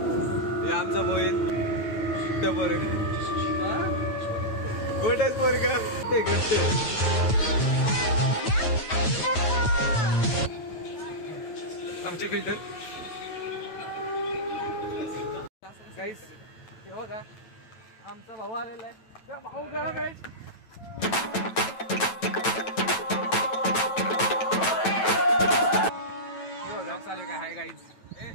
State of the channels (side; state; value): right; late; 9.1 ms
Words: हे आमचा मोहित गोटच पोरगा ते घट्ट आमची बिल्डर. गाईस हे बघा आमचा भाऊ आलेला आहे. भाऊ गरम आहे. हे बघा चालू काय हाय गाईज